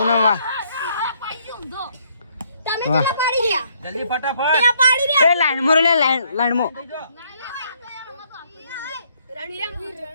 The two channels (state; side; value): inverted; both; correlation -0.68